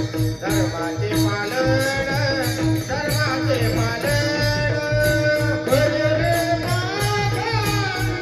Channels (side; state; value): both; identical; correlation 1.00